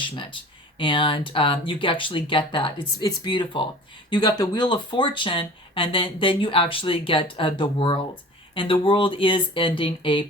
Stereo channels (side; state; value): both; normal; correlation 0.42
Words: And you actually get that. It's beautiful. You got the Wheel of Fortune, and then you actually get the world. And the world is ending a